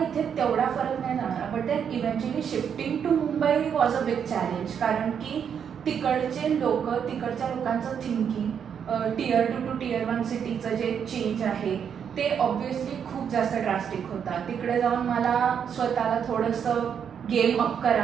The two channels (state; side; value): quieter; left; 7.7 dB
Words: इथे तेवढा फरक नाही जाणवला. But then eventually shifting to Mumbai was a big challenge, कारण की तिकडचे लोक, तिकडच्या लोकांचं थिंकिंग, Tier 2 to Tier 1 सिटीचं जे चेंज आहे ते ऑब्व्हियसली खूप जास्त ड्रास्टिक होता. तिकडे जाऊन मला स्वतःला थोडंसं गेम अप